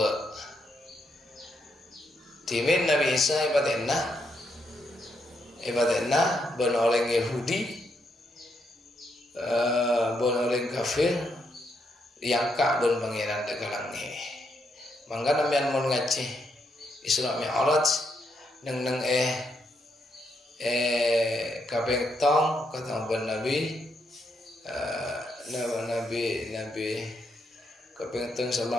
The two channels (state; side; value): normal; both; correlation 0.78